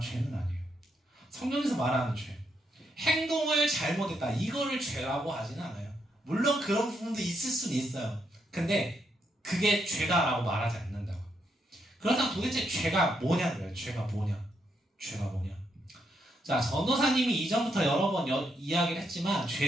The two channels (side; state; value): both; normal; correlation 0.78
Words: 말하는 죄. 행동을 잘못했다. 이거를 죄라고 하지는 않아요. 물론 그런 부분도 있을 수는 있어요. 근데 그게 죄다라고 말하지 않는다고. 그렇다면 도대체 죄가 뭐냐고요. 죄가 뭐냐. 자, 전도사님이 이전부터 여러 번 이야기를 했지만